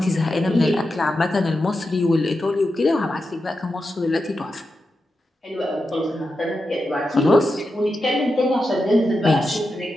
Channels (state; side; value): normal; both; correlation 0.89